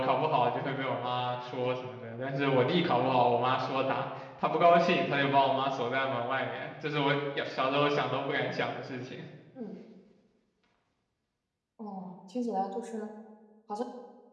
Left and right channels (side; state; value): both; identical; correlation 1.00